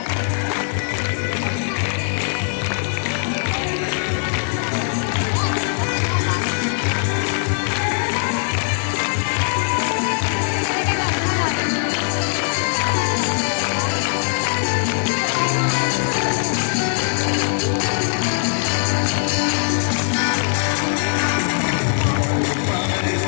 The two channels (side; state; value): right; silent; 58 dB below the other